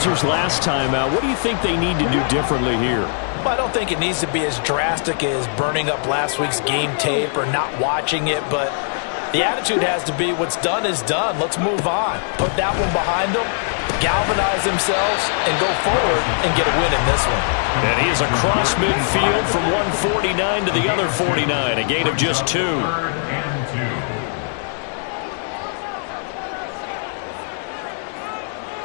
last time out. What do you think they need to do differently here? Well, I don't think it needs to be as drastic as burning up last week's game tape or not watching it, but the attitude has to be what's done is done. Let's move on. Put that one behind them, galvanize themselves, and go forward and get a win in this one. And he is across midfield from 149 to the other 49, a gain of just 2. 3rd and 2.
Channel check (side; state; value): right; silent; digital silence